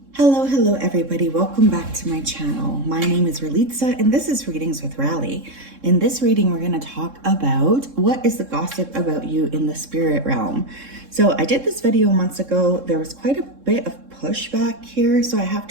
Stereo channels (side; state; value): left; late; 3.7 ms